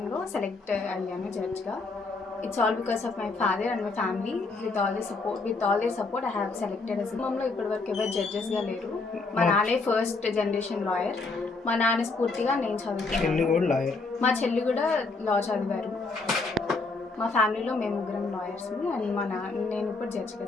సెలెక్ట్ అయ్యాను జడ్జ్గా. It's all because of my father and my family. With all their support, I have selected as మమ్మల్ని ఇప్పటివరకు ఎవరు జడ్జెస్గా లేరు. మా నాన్నే ఫస్ట్ జనరేషన్ లాయర్. మా నాన్న స్ఫూర్తిగా నేను చదువుతున్నాను. మా చెల్లి కూడా లా చదివారు. మా ఫ్యామిలీలో మేము ముగ్గురం లాయర్స్ని అండ్ నేను ఇప్పుడు జడ్జిగా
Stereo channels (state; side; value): quieter; right; 3.8 dB